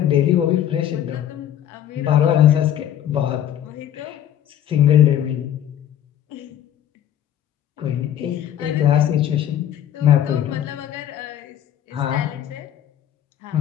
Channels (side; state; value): right; quieter; 10.7 dB